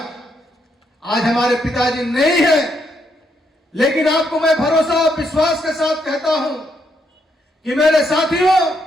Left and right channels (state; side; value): normal; both; correlation 0.76